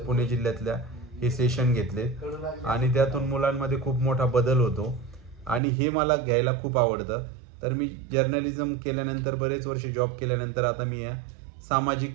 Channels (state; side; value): drops out; left; at 5.6 s